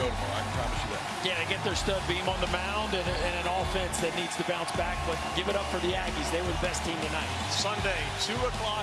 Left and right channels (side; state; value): both; identical; correlation 1.00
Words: go tomorrow. I can promise you that. Yeah, they get their stud beam on the mound and an offense that needs to bounce back, but give it up for the Aggies. They were the best team tonight. Sunday, 2